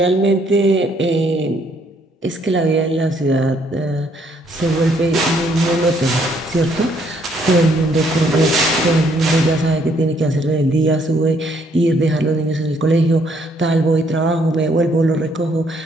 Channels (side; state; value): both; normal; correlation 0.68